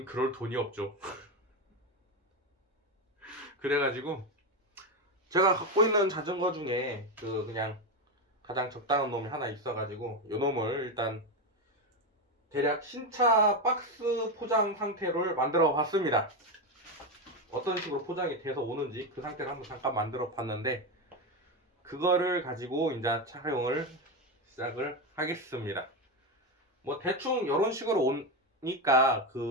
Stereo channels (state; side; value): normal; both; correlation 0.12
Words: 그럴 돈이 없죠. 그래가지고 제가 갖고 있는 자전거 중에 그냥 가장 적당한 놈이 하나 있어가지고 이 놈을 일단 대략 신차 박스 포장 상태로 만들어 봤습니다. 어떤 식으로 포장이 돼서 오는지 그 상태를 한번 잠깐 만들어 봤는데, 그거를 가지고 이제 촬영을 시작을 하겠습니다. 뭐 대충 이런 식으로 오니까